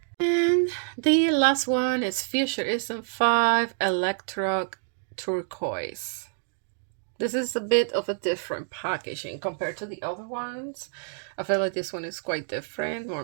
And the last one is Futurism 5 Electro Turquoise. This is a bit of a different packaging compared to the other ones. I feel like this one is quite different,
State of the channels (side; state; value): left; silent; digital silence